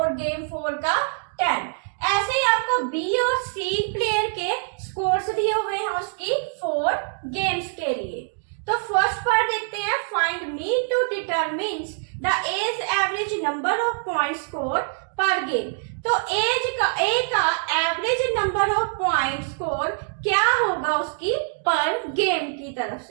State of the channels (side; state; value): left; silent; digital silence